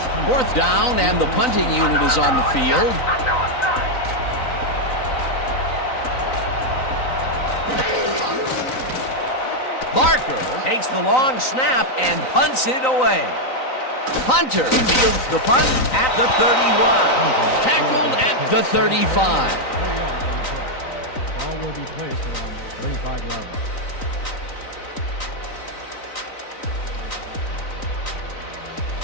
4th down, and the punting unit is on the field. Barker takes the long snap and punts it away. Hunter fields the punt at the 31. Tackled at the 35. 4 yards on the play. Ball will be placed around the 35-yard line.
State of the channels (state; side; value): late; right; 3.9 ms